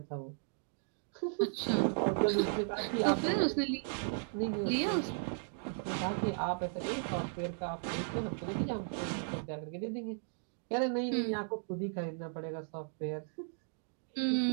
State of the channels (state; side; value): silent; left; digital silence